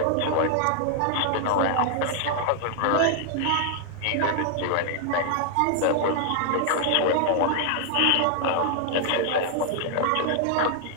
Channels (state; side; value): different; both; correlation 0.00